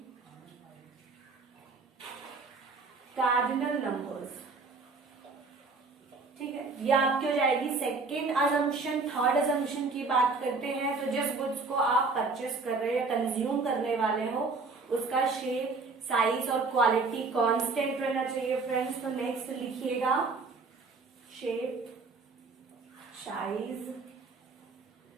cardinal numbers, ठीक है। ये आपकी हो जाएगी सेकेंड अजम्पशन। थर्ड अजम्पशन की बात करते हैं तो जिस गुड्स को आप परचेस कर रहे हो या कंज्यूम करने वाले हो उसका शेप, साइज और क्वालिटी कांस्टेंट रहना चाहिए फ्रेंड्स। तो नेक्स्ट लिखिएगा shape, size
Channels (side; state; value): left; quieter; 4.0 dB